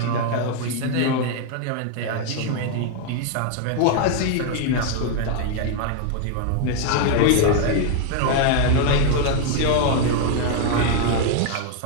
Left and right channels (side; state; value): both; different; correlation 0.00